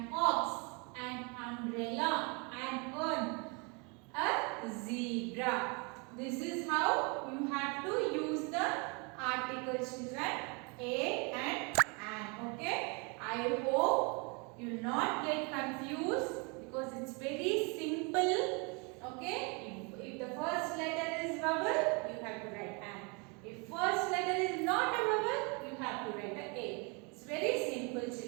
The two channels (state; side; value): quieter; left; 31.9 dB